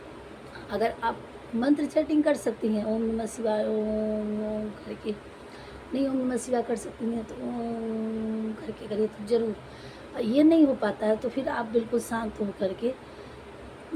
अगर आप मंत्र चैटिंग कर सकती हैं, ओम नमः शिवाय ओम ओम करके, नहीं ओम नमः शिवाय कर सकती हैं तो ओम करके करिए तो ज़रूर। ये नहीं हो पाता है तो फिर आप बिल्कुल शांत हो करके,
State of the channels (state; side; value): identical; both; correlation 1.00